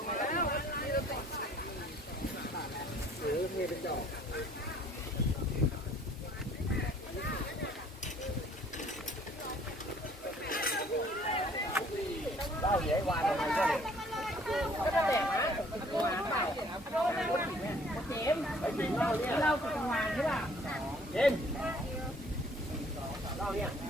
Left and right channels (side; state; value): both; normal; correlation 0.58